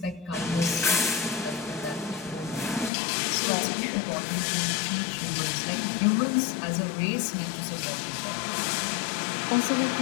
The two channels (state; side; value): drops out; right; at 2.9 s